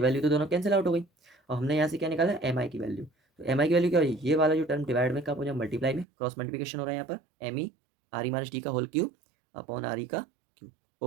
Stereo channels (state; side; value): drops out; left; at 6.1 s